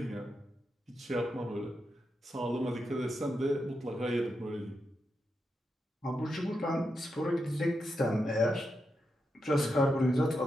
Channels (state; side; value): normal; both; correlation 0.85